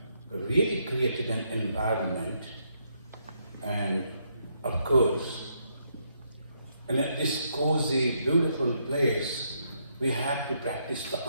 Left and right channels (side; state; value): both; inverted; correlation -0.76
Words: really created an environment, and of course, in this cozy, beautiful place, we have to practice